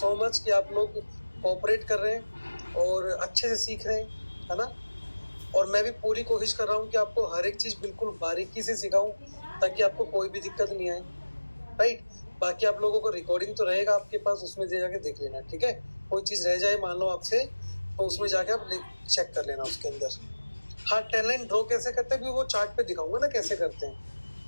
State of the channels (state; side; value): inverted; both; correlation -1.00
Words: much कि आप लोग कोऑपरेट कर रहे हैं और अच्छे से सीख रहे हैं, है ना। और मैं भी पूरी कोशिश कर रहा हूँ कि आपको हर एक चीज़ बिल्कुल बारीकी से सिखाऊं ताकि आपको कोई भी दिक्कत नहीं आए, राइट। बाकी आप लोगों को रिकॉर्डिंग तो रहेगा आपके पास, उसमें जाके देख लेना, ठीक है। कोई चीज़ रह जाए मान लो आपसे तो उसमें जाके आप चेक कर लेना उसके अंदर। हाँ, ट्रेंड लाइन ड्रॉ कैसे करते हैं भी वो चार्ट पे दिखाऊंगा ना कैसे करते